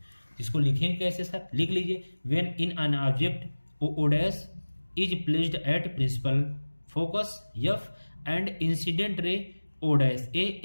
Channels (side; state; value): both; inverted; correlation -1.00